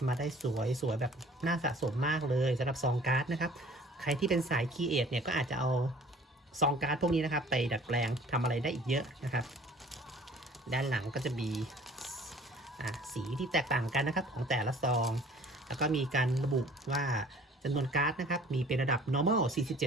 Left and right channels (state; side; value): normal; both; correlation 0.51